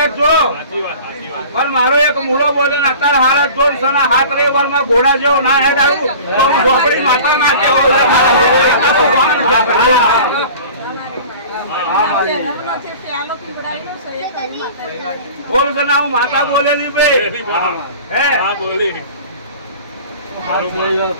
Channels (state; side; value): inverted; both; correlation -0.41